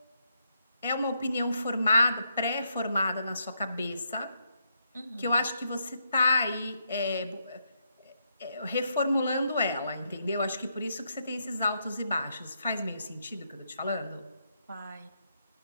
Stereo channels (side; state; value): both; inverted; correlation -0.78